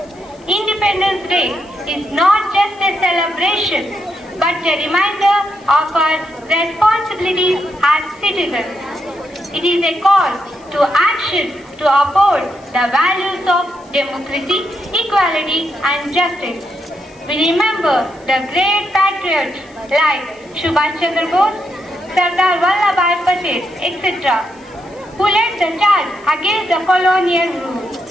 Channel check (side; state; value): left; noise; hiss, 29 dB below the sound